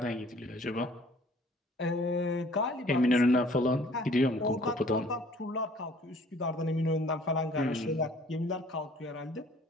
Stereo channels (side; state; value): both; normal; correlation 0.55